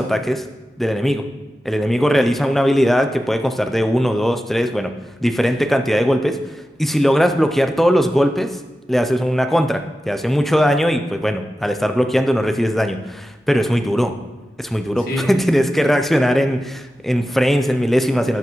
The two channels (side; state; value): both; normal; correlation 0.93